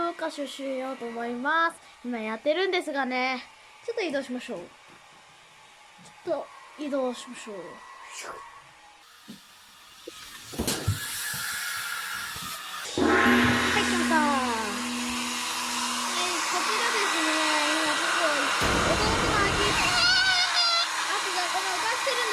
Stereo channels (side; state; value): both; identical; correlation 1.00